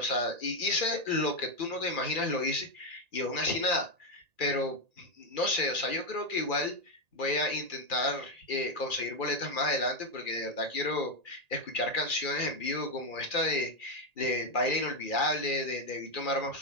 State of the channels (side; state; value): left; late; 1.8 ms